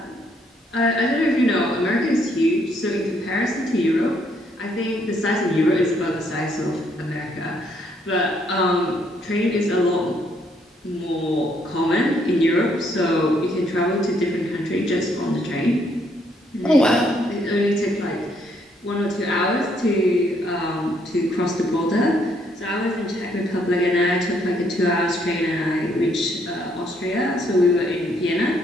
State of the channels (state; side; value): normal; both; correlation 0.70